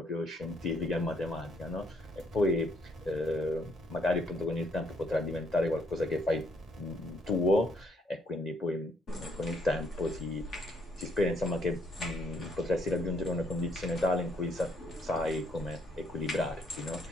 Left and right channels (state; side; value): normal; both; correlation 0.69